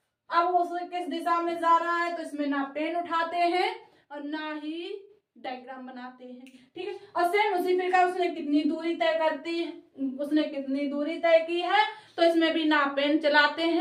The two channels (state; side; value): identical; both; correlation 1.00